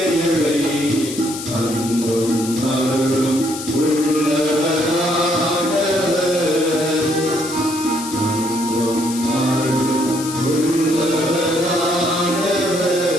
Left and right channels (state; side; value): noise; left; hiss, 9 dB below the sound